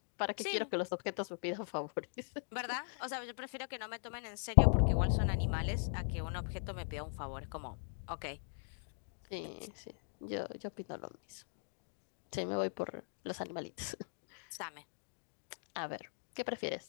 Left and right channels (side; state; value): right; silent; digital silence